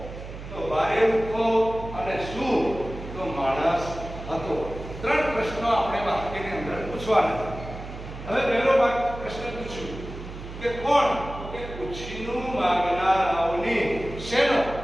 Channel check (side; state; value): right; noise; hum, 11 dB below the sound